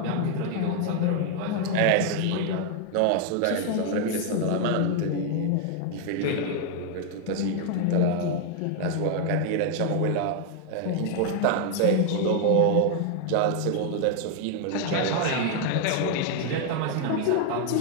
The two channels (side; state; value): both; different; correlation 0.00